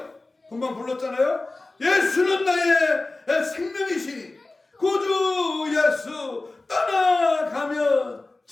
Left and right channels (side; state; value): right; quieter; 3.2 dB